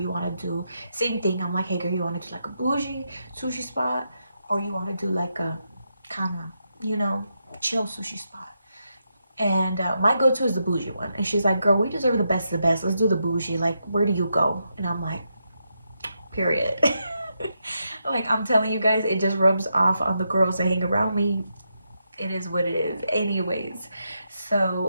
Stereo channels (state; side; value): inverted; both; correlation -0.83